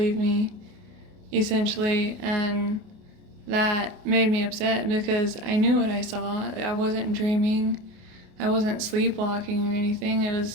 me, essentially, and that made me upset because I knew what I saw. I wasn't dreaming. I wasn't sleepwalking or anything.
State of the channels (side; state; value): left; late; 28 ms